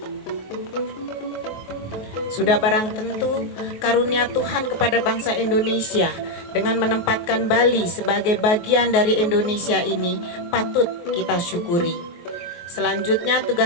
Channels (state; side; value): late; right; 24 ms